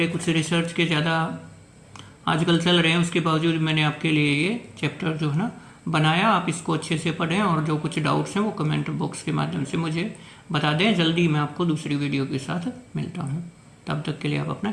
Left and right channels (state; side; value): identical; both; correlation 1.00